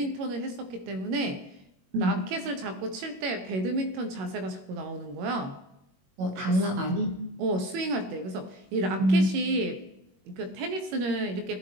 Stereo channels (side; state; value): left; late; 21 ms